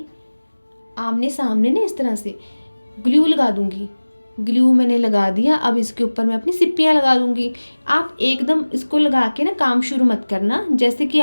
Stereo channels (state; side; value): inverted; both; correlation -1.00